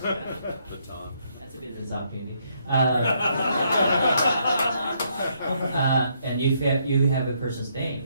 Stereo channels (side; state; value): both; inverted; correlation -0.73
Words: a business opportunity. And if you have a person's